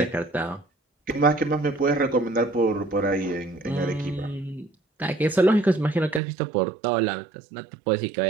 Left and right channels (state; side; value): drops out; left; at 6.2 s